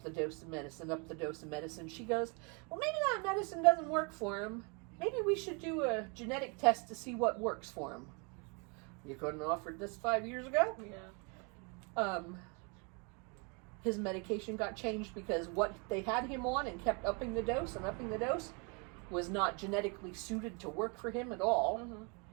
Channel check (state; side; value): quieter; left; 33.5 dB